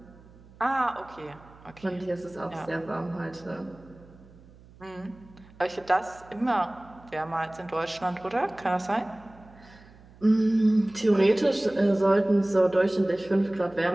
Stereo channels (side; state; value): right; noise; hum, 24 dB below the sound